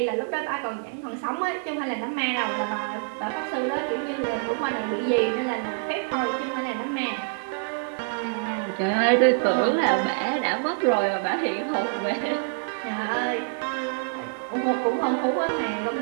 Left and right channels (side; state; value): left; silent; 61 dB below the other